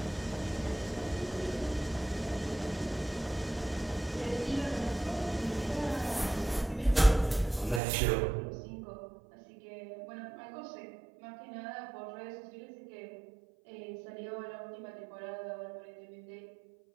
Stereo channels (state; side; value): drops out; left; at 7.8 s